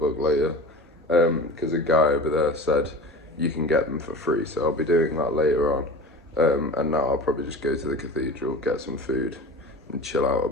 later because a guy over there said you can get them for free. So I'll be doing that later on. And now I'll probably just go to the cathedral, get some food and chill out a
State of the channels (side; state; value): both; normal; correlation 0.35